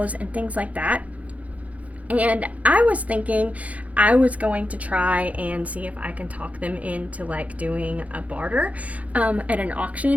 and things like that. And I was thinking I was going to try and see if I can talk them into like doing a barter at an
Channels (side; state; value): left; late; 0.068 ms